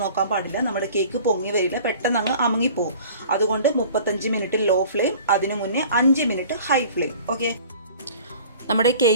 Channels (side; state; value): both; inverted; correlation -0.46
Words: നോക്കാൻ പാടില്ല. നമ്മുടെ കേക്ക് പൊങ്ങി വരില്ല, പെട്ടെന്ന് അങ്ങ് അമുങ്ങിപ്പോവും. അതുകൊണ്ട് 35 മിനിറ്റ് ലോ ഫ്ലെയിം, അതിനു മുന്നേ 5 മിനിറ്റ് ഹൈ ഫ്ലെയിം. ഓക്കെ, നമ്മുടെ